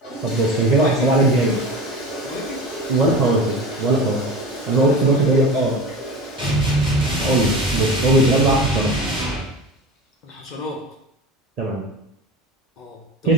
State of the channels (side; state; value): both; normal; correlation 0.31